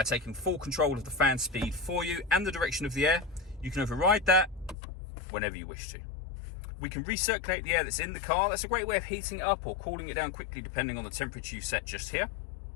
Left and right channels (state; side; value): drops out; right; at 4.8 s